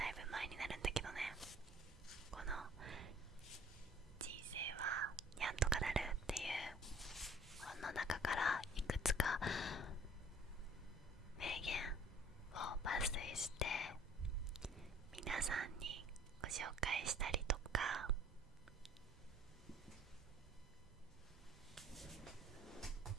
いぶ前になるんだけどね、この人生はにゃんとかなるっていう本の中からいくつか名言を抜粋して皆さんにご紹介したりとか、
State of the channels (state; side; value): normal; both; correlation 0.53